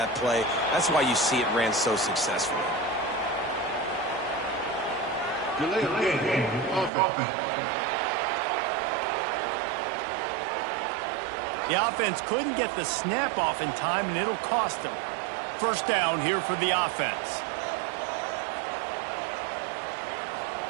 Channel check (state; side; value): drops out; left; at 6.9 s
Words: play. That's why you see it ran so successfully. The offense couldn't get the snap off in time, and it'll cost them. First down here for the offense.